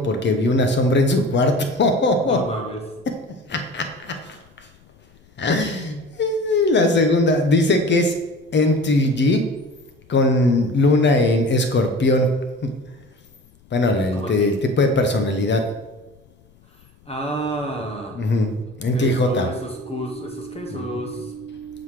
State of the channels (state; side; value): noise; left; rumble, 30 dB below the sound